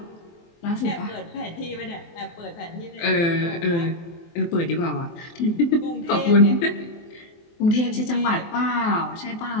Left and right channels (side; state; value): right; late; 23 ms